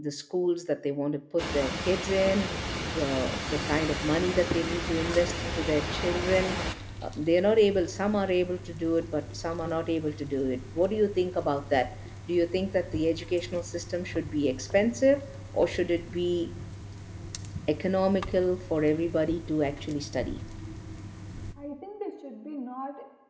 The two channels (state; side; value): identical; both; correlation 1.00